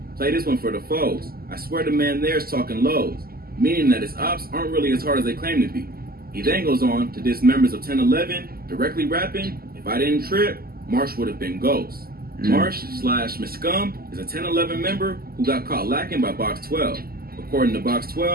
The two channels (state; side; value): late; left; 0.44 ms